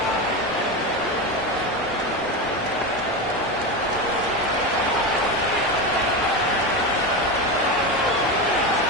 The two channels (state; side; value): noise; right; rumble, 21 dB below the sound